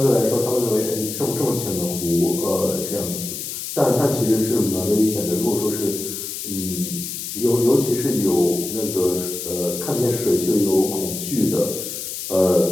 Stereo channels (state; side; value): noise; left; hiss, 7 dB below the sound